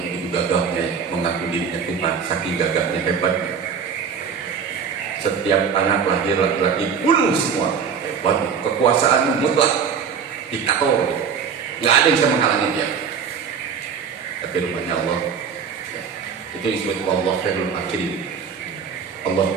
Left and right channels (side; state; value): left; quieter; 6.7 dB